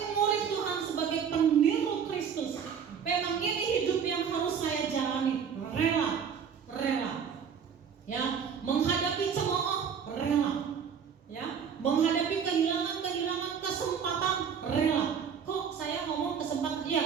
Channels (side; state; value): left; quieter; 7.2 dB